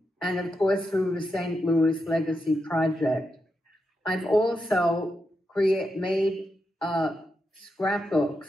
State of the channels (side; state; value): both; normal; correlation 0.86